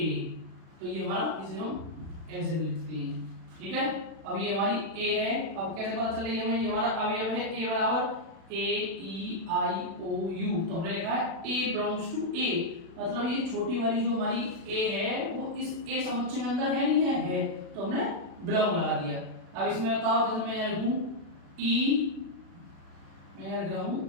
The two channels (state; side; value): late; left; 36 ms